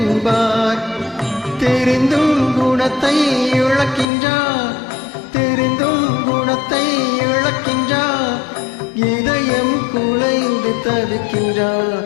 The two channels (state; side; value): drops out; right; at 4.0 s